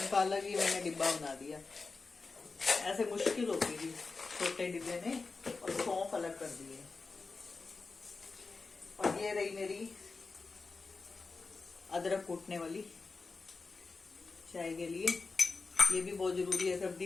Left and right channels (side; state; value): right; quieter; 4.2 dB